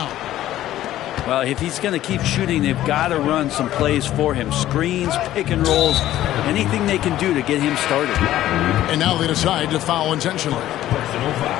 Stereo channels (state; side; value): quieter; right; 13.6 dB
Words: Well, if he's going to keep shooting, they've got to run some plays for him. Screens, pick and rolls, anything they can do to get him started. And now they decide to foul intentionally.